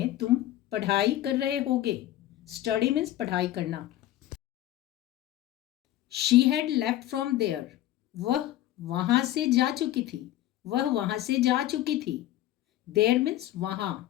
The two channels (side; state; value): right; quieter; 13.9 dB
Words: तुम पढ़ाई कर रहे होगे। स्टडी मीन्स पढ़ाई करना। She had left from there, वह वहां से जा चुकी थी, वह वहां से जा चुकी थी। देयर मीन्स वहां।